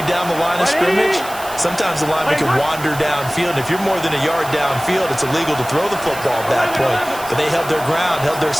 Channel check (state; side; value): noise; right; hiss, 14 dB below the sound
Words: down the line of scrimmage, sometimes the lineman can wander downfield. And if you're more than a yard downfield, it's illegal to throw the football at that point. But they held their ground, held their